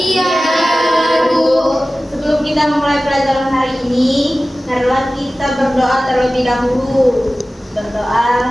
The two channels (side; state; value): both; normal; correlation 0.96